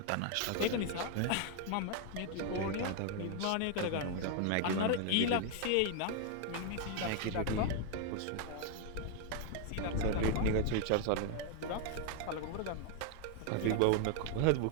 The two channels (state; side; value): different; both; correlation 0.00